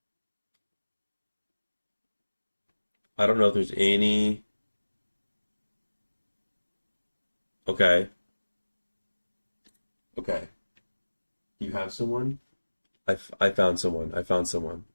I don't know if there's any. Okay. Okay. You have someone? I found someone. I found someone.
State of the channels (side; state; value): both; inverted; correlation -1.00